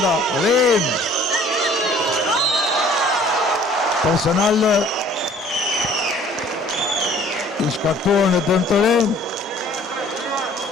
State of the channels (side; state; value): both; normal; correlation 0.54